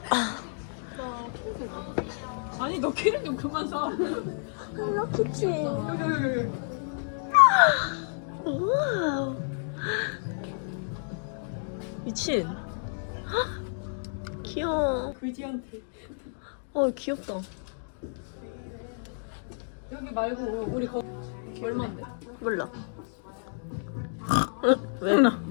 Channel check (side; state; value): right; silent; digital silence